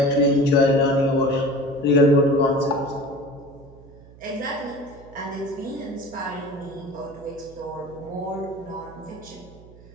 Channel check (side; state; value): right; noise; hum, 22 dB below the sound